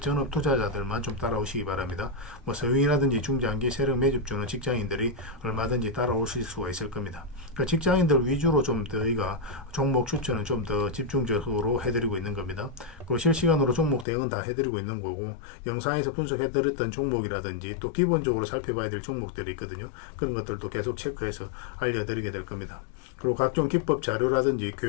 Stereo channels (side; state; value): right; drops out; at 14.1 s